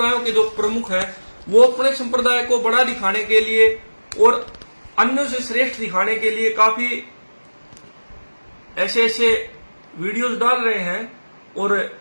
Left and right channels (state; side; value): inverted; both; correlation -1.00